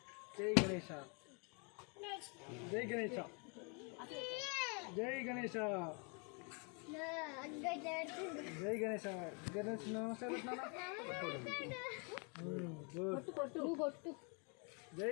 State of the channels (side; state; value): right; quieter; 35.6 dB